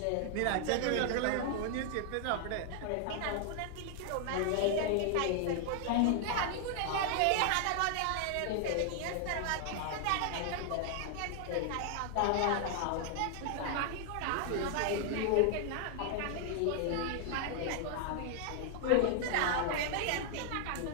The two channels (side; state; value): both; different; correlation 0.00